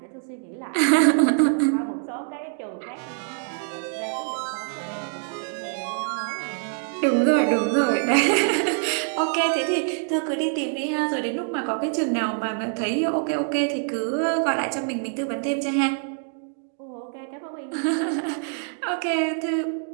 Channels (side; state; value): left; silent; 58 dB below the other